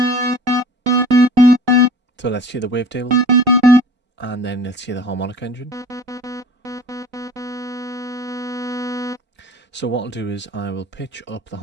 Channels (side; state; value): left; late; 3.9 ms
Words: So let's hear the wavetable, and then let's hear the harmonic engine. So what I'll do is I will pitch up the